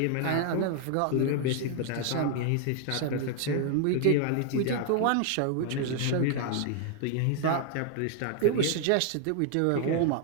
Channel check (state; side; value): different; both; correlation 0.00